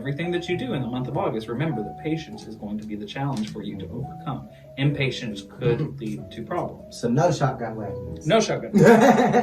that you do in the month of August, remember that patience is going to be the challenge for you to overcome. Impatience could lead to problems. So no shotgun weddings. No shotgun.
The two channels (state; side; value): identical; both; correlation 1.00